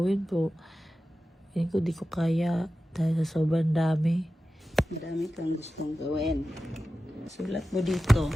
pero hindi ko di ko kaya dahil sa sobrang dami. Marami kang gustong gawin. Sulat mo dito.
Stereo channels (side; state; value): both; normal; correlation 0.94